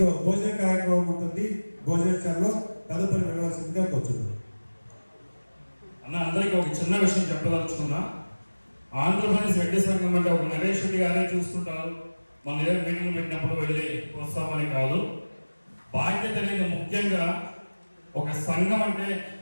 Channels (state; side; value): inverted; both; correlation -1.00